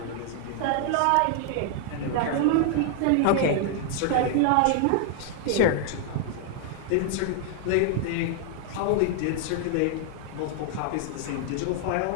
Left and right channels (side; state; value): both; different; correlation 0.00